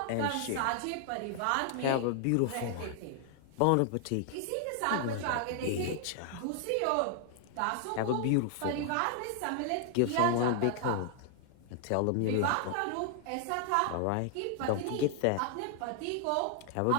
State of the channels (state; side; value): different; both; correlation 0.00